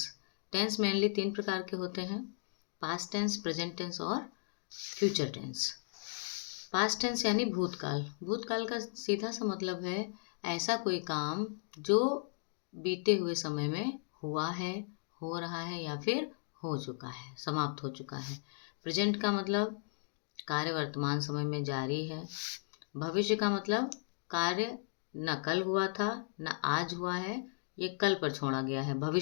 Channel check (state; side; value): silent; right; digital silence